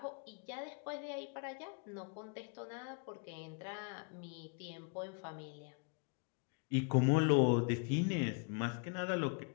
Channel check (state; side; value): quieter; right; 39.1 dB